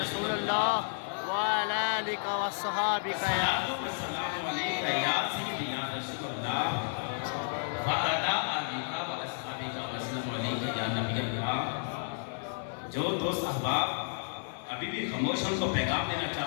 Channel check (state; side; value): silent; right; 57 dB below the other